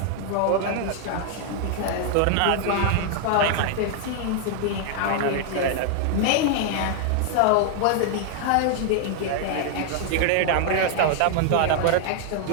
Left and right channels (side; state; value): both; different; correlation 0.00